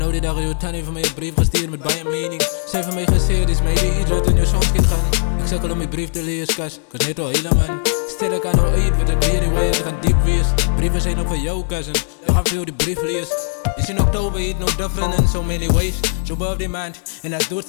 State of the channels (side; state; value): right; silent; digital silence